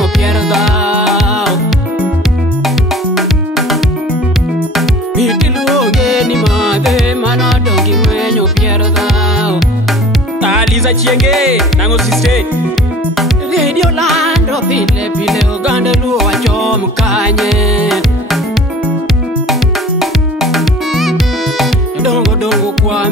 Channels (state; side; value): normal; both; correlation 0.45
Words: pierda miti luonge ni mate mano dongi wenyo pierda Aliza chienge nango siste Radio Lando pile oganda luo chom kanye Dongo kwa